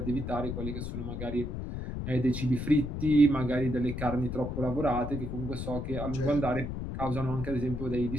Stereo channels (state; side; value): noise; left; rumble, 5 dB below the sound